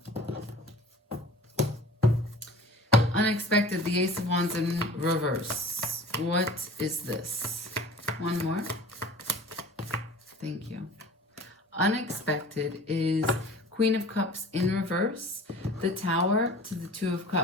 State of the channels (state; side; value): normal; both; correlation 0.43